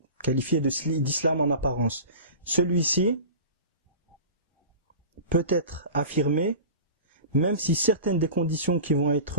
qualifier d'islam en apparence, celui-ci peut être affirmé même si certaines des conditions qui vont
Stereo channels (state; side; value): inverted; both; correlation -0.35